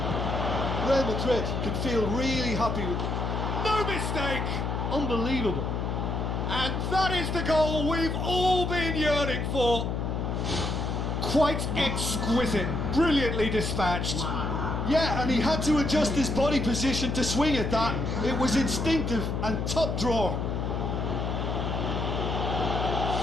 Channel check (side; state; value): left; noise; hum, 1 dB below the sound